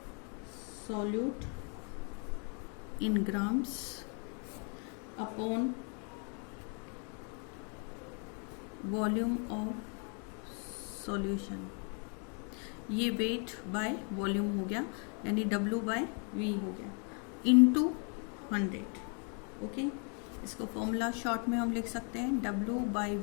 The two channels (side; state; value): right; quieter; 39.5 dB